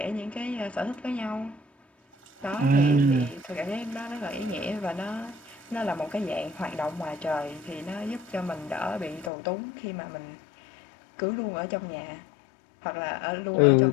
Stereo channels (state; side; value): drops out; right; at 9.3 s